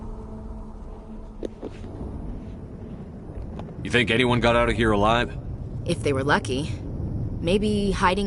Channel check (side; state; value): both; identical; correlation 1.00